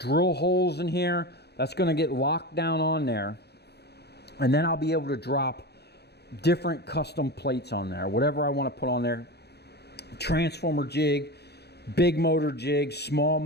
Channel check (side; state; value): right; late; 0.48 ms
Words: holes in here. That's going to get locked down on there. And then I'll be able to drop different custom plates on there. Whatever I want to put on there. Transformer jig, big motor jig, small